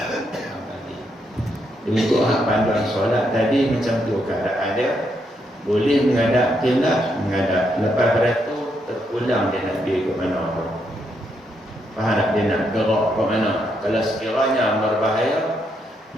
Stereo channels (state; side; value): normal; both; correlation 0.78